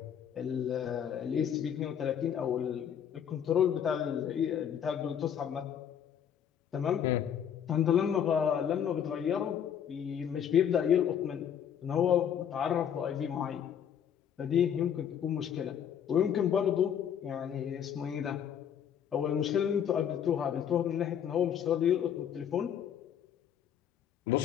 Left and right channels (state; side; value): quieter; right; 8.8 dB